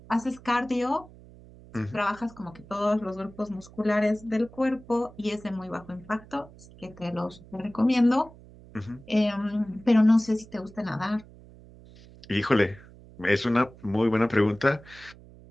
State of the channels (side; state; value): right; noise; hum, 21 dB below the sound